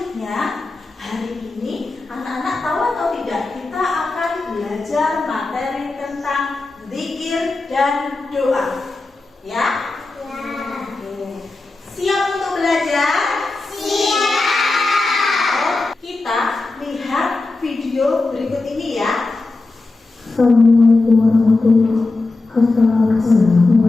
Selanjutnya, hari ini anak-anak tahu atau tidak, kita akan belajar materi tentang zikir dan doa. Ya? Oke. Siap untuk belajar? Siap. Kita lihat video berikut ini ya. Assalamualaikum warahmatullahi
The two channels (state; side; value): quieter; right; 3.4 dB